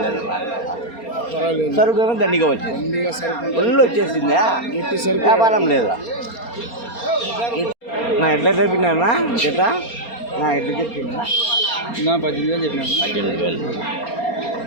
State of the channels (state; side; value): late; right; 4.3 ms